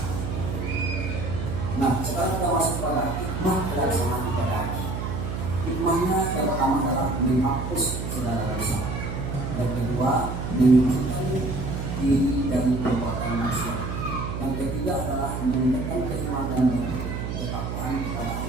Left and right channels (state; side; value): noise; right; hum, 4 dB below the sound